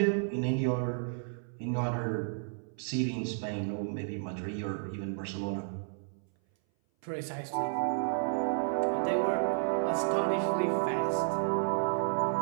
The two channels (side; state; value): left; silent; 56 dB below the other